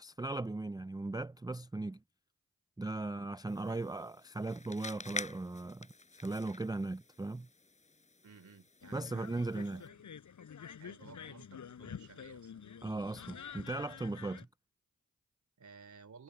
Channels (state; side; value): normal; both; correlation 0.75